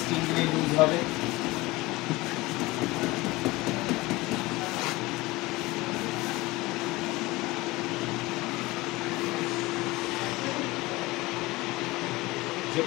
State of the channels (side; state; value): right; quieter; 21.0 dB